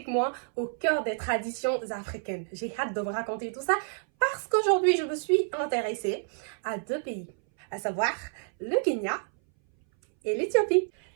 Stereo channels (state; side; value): silent; left; 59 dB below the other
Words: moi au cœur des traditions africaines. J'ai hâte de vous raconter tout ça parce qu'aujourd'hui, je me suis intéressée à deux pays, à savoir le Kenya et l'Éthiopie.